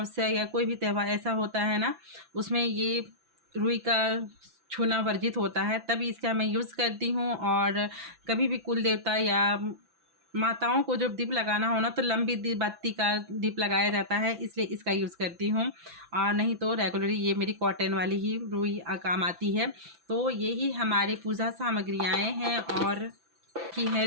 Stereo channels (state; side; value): late; left; 5.9 ms